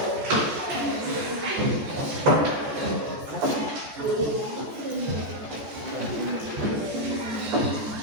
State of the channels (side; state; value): left; late; 14 ms